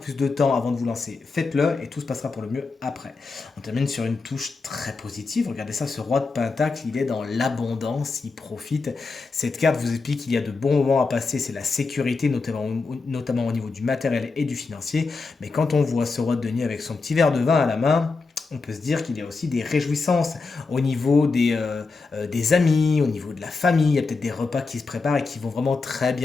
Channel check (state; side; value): quieter; right; 4.2 dB